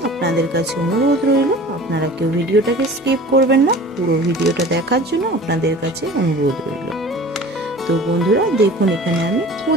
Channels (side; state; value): both; normal; correlation 0.42